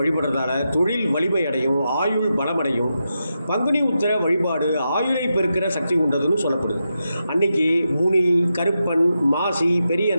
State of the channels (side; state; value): both; inverted; correlation -0.87